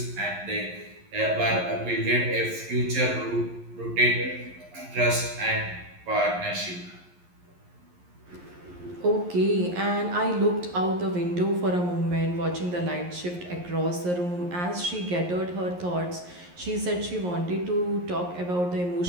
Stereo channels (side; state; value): left; late; 11 ms